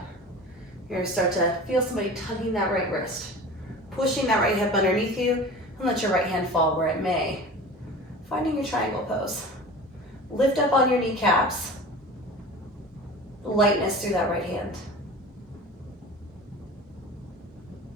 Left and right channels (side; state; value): both; normal; correlation 0.37